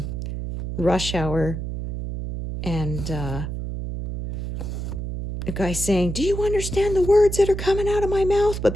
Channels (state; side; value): noise; right; hum, 5 dB below the sound